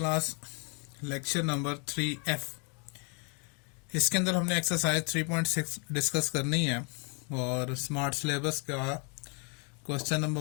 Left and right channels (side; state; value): right; quieter; 36.2 dB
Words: lecture number 3F। इसके अंदर हमने एक्सरसाइज 3.6 डिस्कस करनी है और स्मार्ट सिलेबस का क्वेश्चन